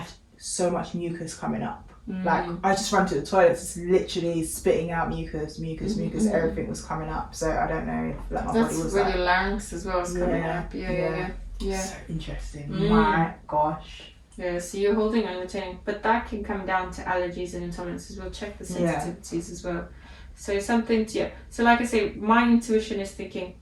so much mucus coming up. Like I just ran to the toilet, just literally spitting out mucus, everything was coming up. So I don't know if like my body was like, your larynx as well is coming up. So interesting. My gosh. So you're holding and retaining, but that can come down to allergies and intolerances. We'll check the sensitivities as well. So something to so like I say, my intuition is thinking,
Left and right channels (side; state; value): both; identical; correlation 1.00